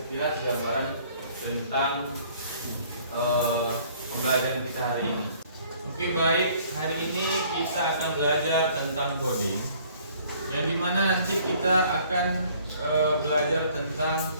gambaran tentang pembelajaran kita hari ini. Oke baik, hari ini kita akan belajar tentang coding, yang dimana nanti kita akan belajar tentang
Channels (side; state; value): both; inverted; correlation -0.57